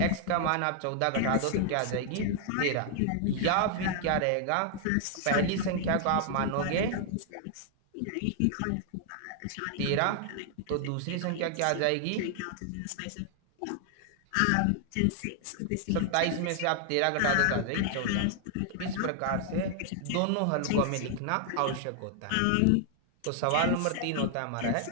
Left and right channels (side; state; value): both; different; correlation 0.00